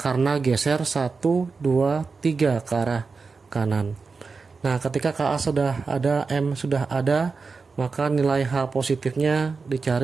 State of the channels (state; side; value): quieter; left; 4.6 dB